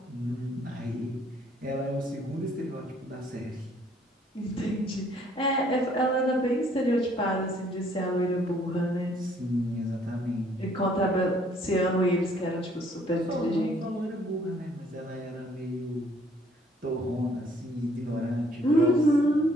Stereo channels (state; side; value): normal; both; correlation 0.62